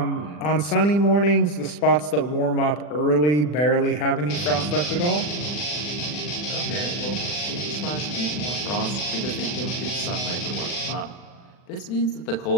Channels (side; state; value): right; late; 40 ms